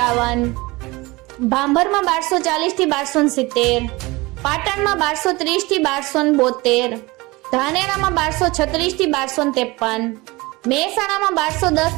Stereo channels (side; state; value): left; quieter; 22.7 dB